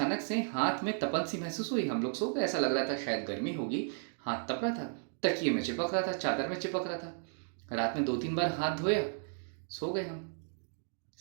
से हाथ में तपन सी महसूस हुई। हम लोग सो गए, ऐसा लग रहा था शायद गर्मी होगी। हाथ तप रहा था, तकिए में चिपक रहा था, चादर में चिपक रहा था। रात में 2-3 बार हाथ धोया, सो गए हम।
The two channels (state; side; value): silent; left; 55 dB below the other